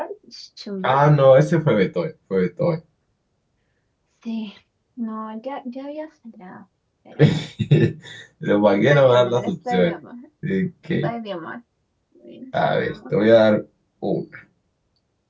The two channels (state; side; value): identical; both; correlation 1.00